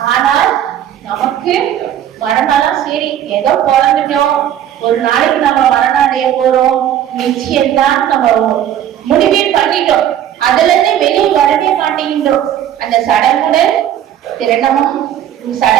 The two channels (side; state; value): left; quieter; 10.8 dB